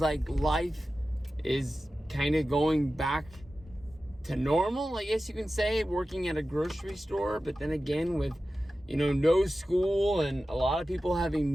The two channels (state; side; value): normal; both; correlation 0.94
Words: like life is kind of going back to normal, I guess you can say, working at a grocery store. But then again, with no school and a lot of people having